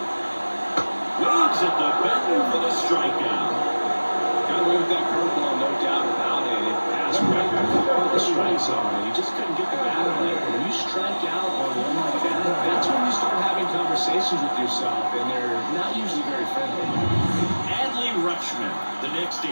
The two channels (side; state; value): both; inverted; correlation -1.00